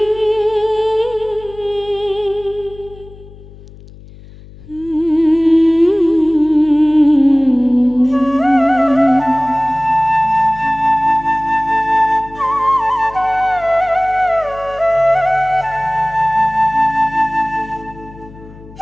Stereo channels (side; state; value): left; noise; hum, 20 dB below the sound